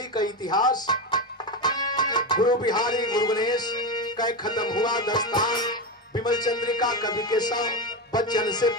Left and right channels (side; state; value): both; normal; correlation 0.16